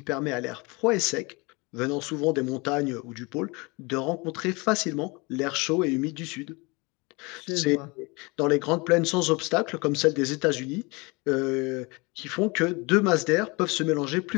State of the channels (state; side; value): quieter; right; 27.0 dB